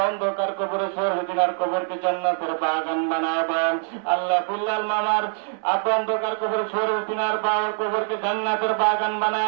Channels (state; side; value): silent; left; 55 dB below the other